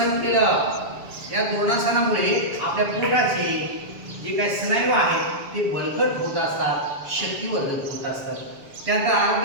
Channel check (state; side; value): late; left; 7.1 ms